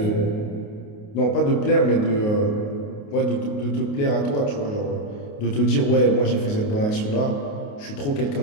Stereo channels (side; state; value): right; late; 28 ms